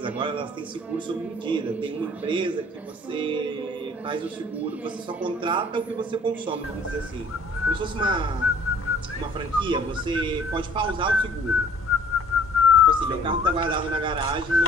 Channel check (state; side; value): normal; both; correlation 0.55